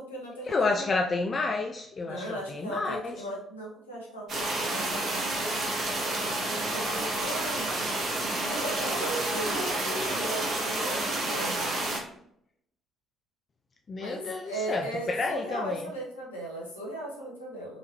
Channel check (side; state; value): both; normal; correlation 0.66